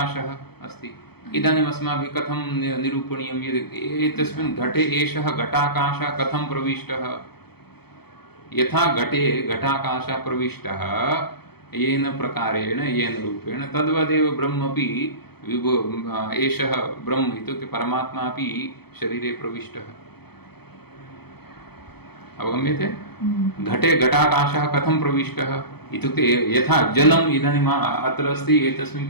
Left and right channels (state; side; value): late; right; 0.97 ms